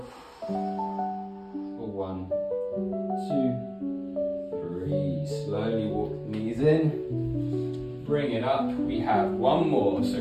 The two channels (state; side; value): identical; both; correlation 1.00